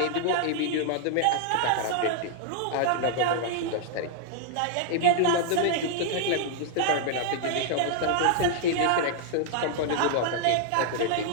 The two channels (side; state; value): both; different; correlation -0.01